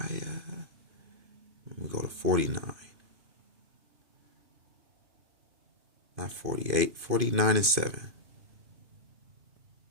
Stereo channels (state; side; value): late; left; 2.5 ms